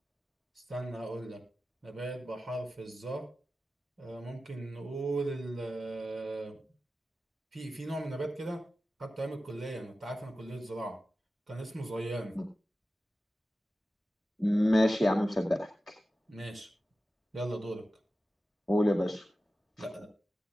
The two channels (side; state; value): both; normal; correlation 0.94